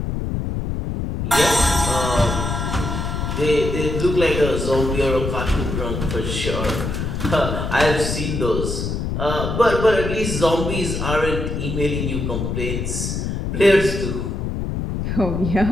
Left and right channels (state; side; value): noise; left; rumble, 3 dB below the sound